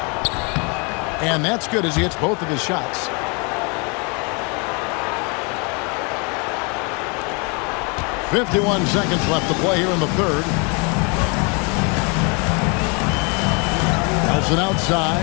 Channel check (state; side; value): quieter; right; 32.8 dB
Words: And that's good as he hits both of his shots. .51 seconds left to play here in the third. Nelson